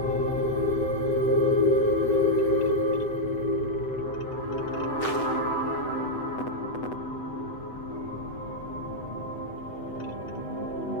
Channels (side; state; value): right; late; 8.0 ms